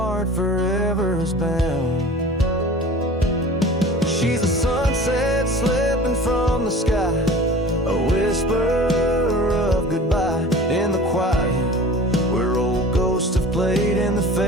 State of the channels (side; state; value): both; normal; correlation 0.41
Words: forever bound. She's a sunset slipping from the sky, a whisper of goodbye in the quiet, where old ghosts have played in the